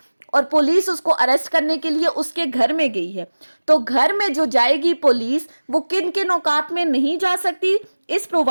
और पुलिस उसको अरेस्ट करने के लिए उसके घर में गई है, तो घर में जो जाएगी पुलिस वो किन किन औकात में नहीं जा सकती? इस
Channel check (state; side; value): inverted; both; correlation -1.00